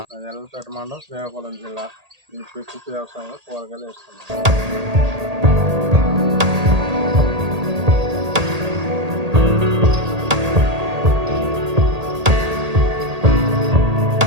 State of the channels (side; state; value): left; late; 1.8 ms